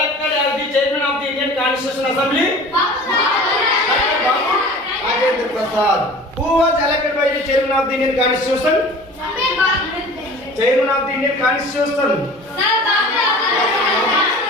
as the chairman of the Indian Constitution Assembly? Dr. Babu Rajendra Prasad. Who was elected by the chairman of the Indian Constitution? Chairman of the Indian Constitution.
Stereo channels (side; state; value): both; normal; correlation 0.42